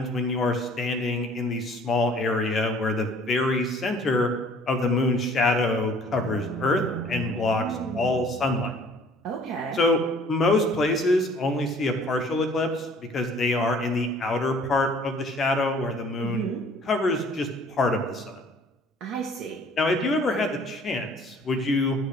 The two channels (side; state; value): both; normal; correlation 0.54